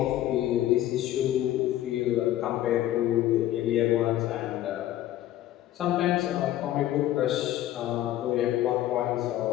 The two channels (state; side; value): quieter; right; 13.5 dB